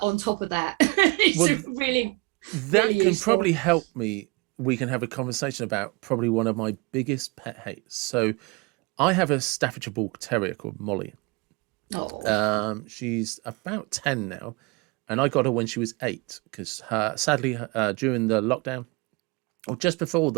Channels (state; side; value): quieter; left; 27.4 dB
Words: top of that. It's really That can useful. probably help me. We can have a conversation about probably one of my biggest pet hates. So I have a Staffordshire Bull Terrier called Molly. Oh. She's about 10 now, and I got her when she was 8 because sadly during the lockdown, or just before